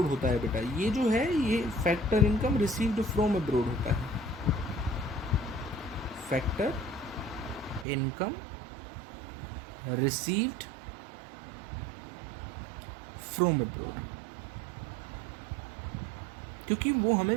होता है बेटा। ये जो है ये factor income received from abroad होता है। Factor income received from abroad, क्योंकि वो हमें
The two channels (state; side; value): drops out; left; at 7.9 s